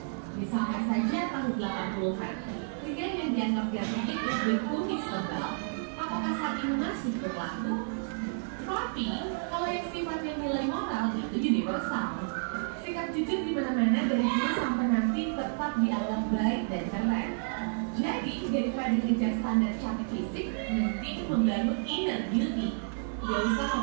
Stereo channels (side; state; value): left; silent; digital silence